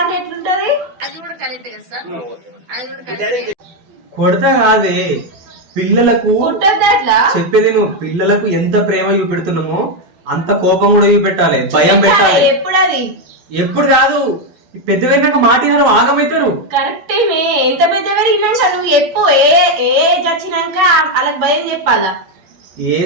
అంటే ఎట్లుంటది? కొడతా కాదే పిల్లలకు కొట్టద్దు అట్లా. చెప్పేది నువ్వు పిల్లలకు ఎంత ప్రేమ చూపెడుతున్నామో అంత కోపం కూడా చూపెట్టాలి, భయం పెట్టాలి. ఎప్పుడు అది ఎప్పుడు కాదు పెద్ద పెరిగినాక మాట ఆగమవుతారు. కరెక్టే. ఎంత పెద్ద పెరిగినాక నువ్వు ఎప్పుడు ఏ చచ్చినాక వాళ్ళకి భయం చెప్పాలా?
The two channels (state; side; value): late; left; 12 ms